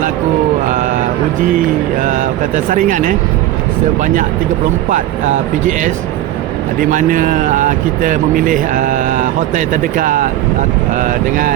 uji saringan sebanyak 34 PGS, di mana kita memilih hotel terdekat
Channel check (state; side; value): quieter; left; 13.7 dB